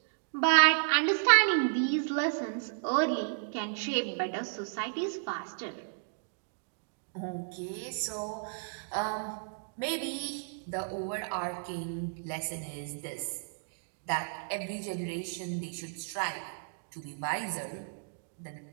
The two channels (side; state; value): left; silent; digital silence